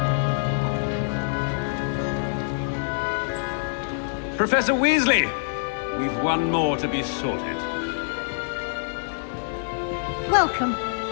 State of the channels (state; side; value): silent; right; 60 dB below the other